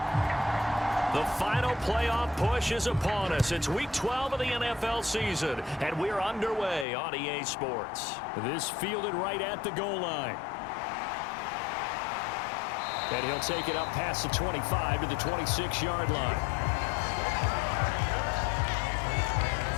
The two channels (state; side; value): drops out; right; at 6.9 s